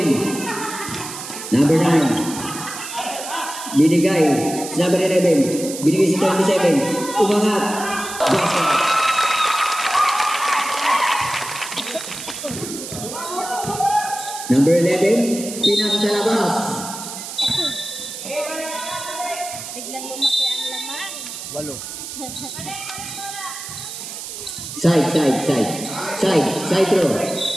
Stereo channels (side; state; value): right; noise; hiss, 9 dB below the sound